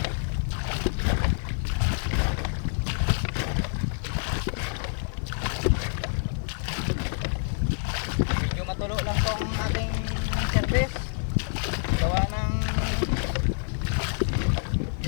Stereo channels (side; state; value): right; silent; 60 dB below the other